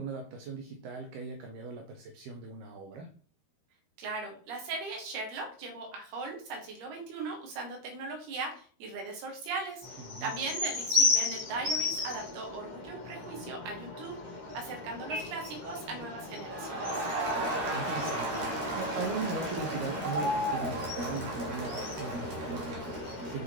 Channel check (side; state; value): left; late; 13 ms